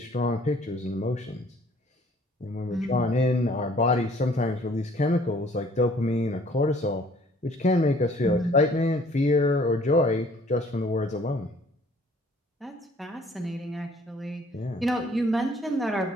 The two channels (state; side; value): normal; both; correlation 0.57